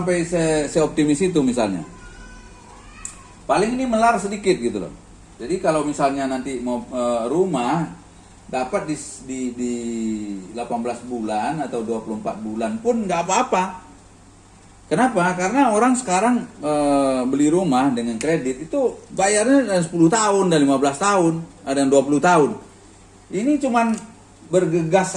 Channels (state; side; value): identical; both; correlation 1.00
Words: seoptimis itu misalnya. Paling ini melar sedikit gitu loh. Jadi kalau misalnya nanti mau rumah dapat di 18 bulan atau 24 bulan pun nggak apa-apa. Kenapa? Karena orang sekarang beli rumah dengan kredit itu bayarnya 10 tahun dan 15 tahun, ada yang 20 tahun. Ini cuman bergegas